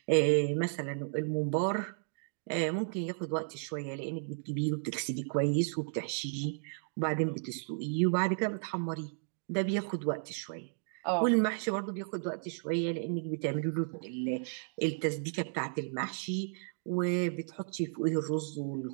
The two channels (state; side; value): silent; left; digital silence